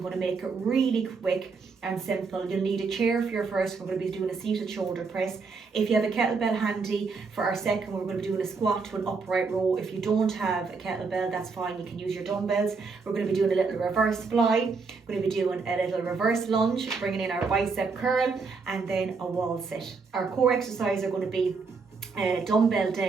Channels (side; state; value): left; quieter; 4.7 dB